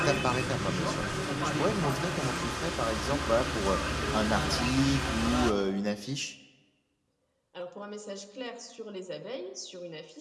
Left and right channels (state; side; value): identical; both; correlation 1.00